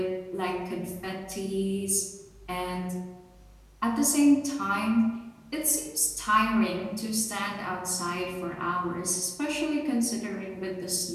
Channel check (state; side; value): identical; both; correlation 1.00